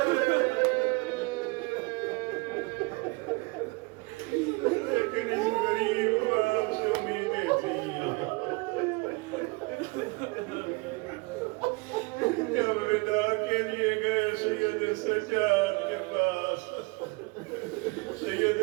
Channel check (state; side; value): quieter; left; 27.3 dB